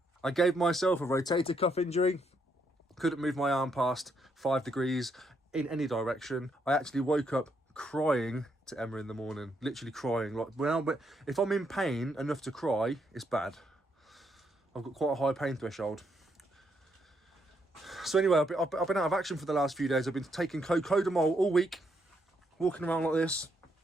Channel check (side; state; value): both; normal; correlation 0.76